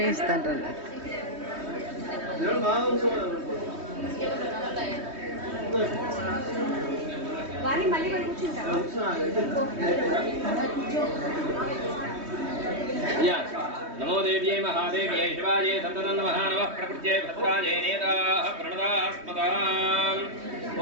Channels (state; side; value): late; left; 3.2 ms